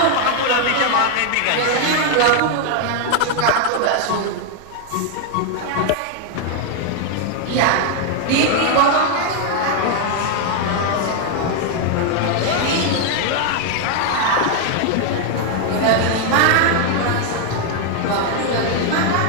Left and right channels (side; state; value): both; different; correlation 0.00